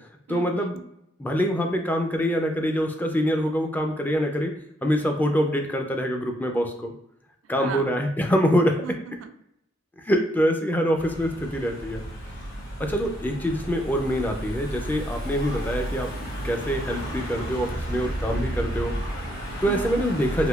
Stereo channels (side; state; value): both; normal; correlation 0.74